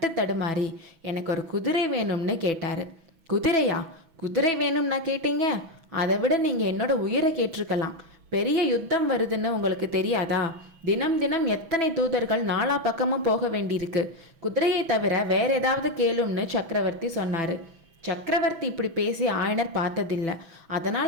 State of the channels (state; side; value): late; left; 6.1 ms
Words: தடுமாறி, எனக்கு ஒரு குதிரை வேணும்னு கேட்டார். குதிரையா? குதிரை வேணும்னா கேட்டீங்க? அதை விட நீங்கள் என்னோட உயிரை கேட்டிருக்கலாம். பெரிய யுத்தம் வருதுன்னு உங்களுக்கு தெரியாதா? தினம் தினம் எத்தனை தூதர்கள் நாலா பக்கமும் போக வேண்டியிருக்கு. குதிரையை தவிர வேற ஏதாவது கேளும்னு சக்கரவர்த்தி சொன்னார். சக்கரவர்த்தி இப்படி பேசி ஆயனர் பார்த்ததில்லை.